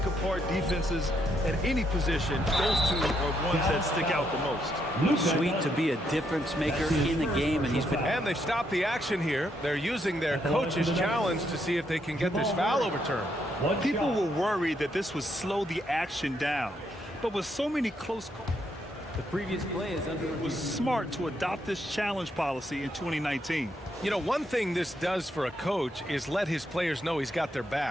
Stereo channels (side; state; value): both; normal; correlation 0.76